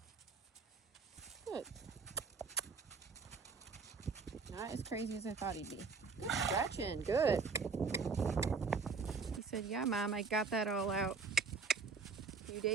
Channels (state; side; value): quieter; left; 4.8 dB